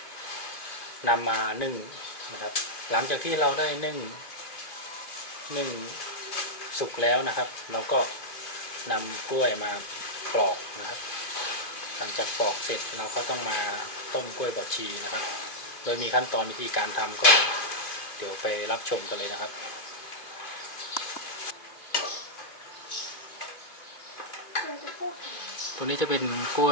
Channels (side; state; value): right; late; 2.6 ms